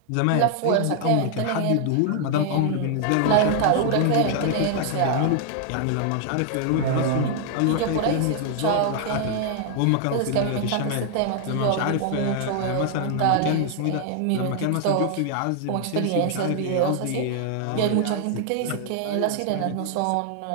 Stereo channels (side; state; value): both; different; correlation 0.00